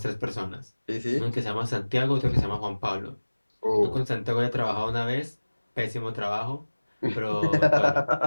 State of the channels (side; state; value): both; inverted; correlation -1.00